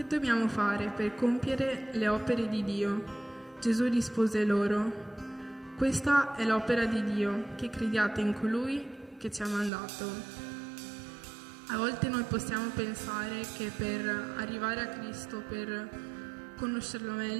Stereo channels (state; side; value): drops out; left; at 9.7 s